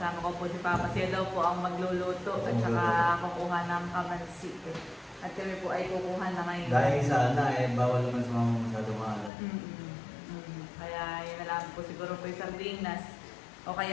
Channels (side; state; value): right; drops out; at 9.3 s